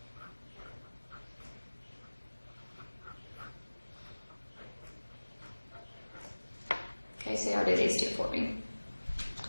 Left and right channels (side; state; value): both; inverted; correlation -1.00